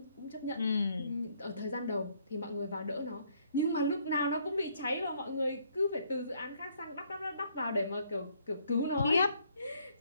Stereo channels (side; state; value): both; inverted; correlation -0.67